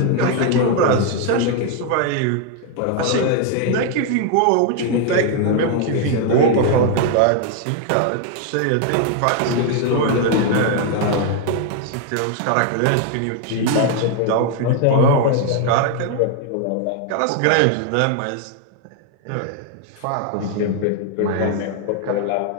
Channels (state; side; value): different; both; correlation 0.00